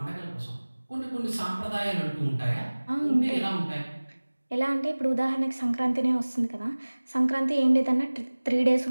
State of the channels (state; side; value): inverted; both; correlation -1.00